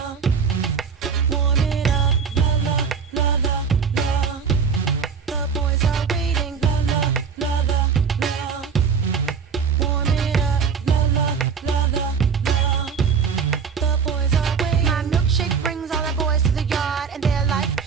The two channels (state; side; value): quieter; left; 6.2 dB